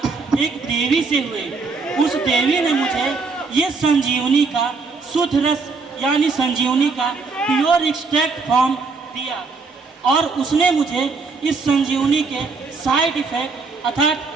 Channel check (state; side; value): quieter; left; 4.4 dB